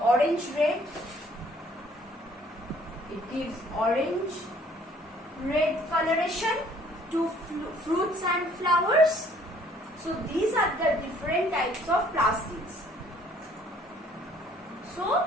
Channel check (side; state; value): both; normal; correlation 0.59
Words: It gives orange-red coloration to fruits and flowers. So these are the different types of plastids. So